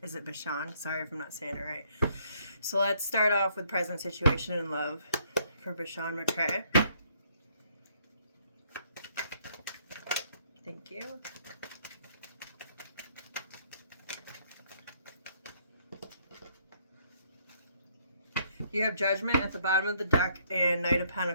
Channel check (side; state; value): both; inverted; correlation -0.68